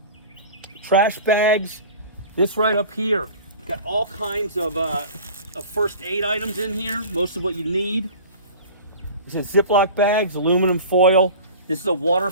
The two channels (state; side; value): inverted; both; correlation -0.39